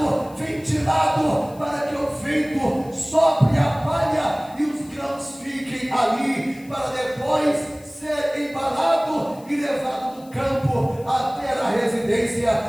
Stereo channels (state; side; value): noise; left; hiss, 25 dB below the sound